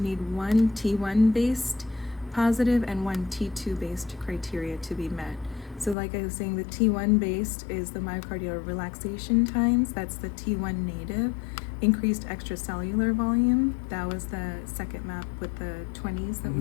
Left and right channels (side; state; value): right; drops out; at 6.0 s